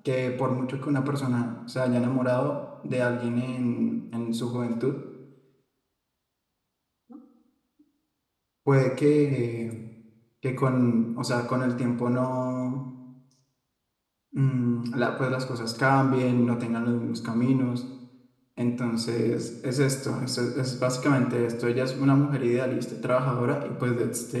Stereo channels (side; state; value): both; identical; correlation 1.00